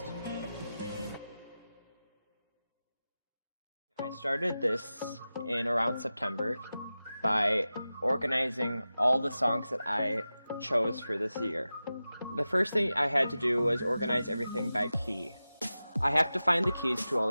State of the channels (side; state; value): both; inverted; correlation -0.94